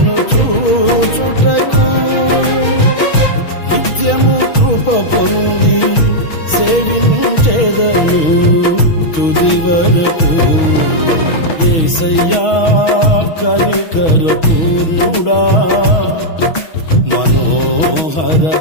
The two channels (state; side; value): late; right; 6.2 ms